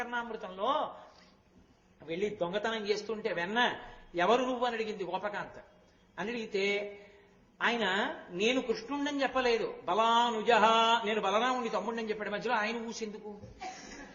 వెళ్ళి దొంగతనం చేస్తుంటే వెన్న ఎవరు నువ్వు అని అడిగింది గోపకాంత. అని అడిగితే ఆయన నేను కృష్ణుండని చెప్పలేదు, బలానుజహ, నేను బలరాముడి తమ్ముడిని చెప్పాడు. మధ్యలో ఆయన ఊసెందుకు?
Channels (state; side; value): identical; both; correlation 1.00